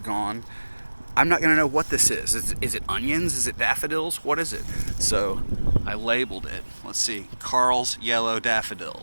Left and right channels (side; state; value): both; inverted; correlation -1.00